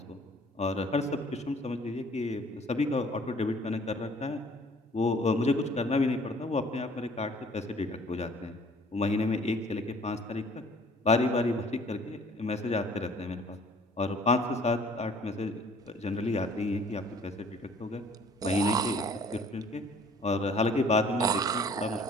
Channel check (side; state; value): both; normal; correlation 0.54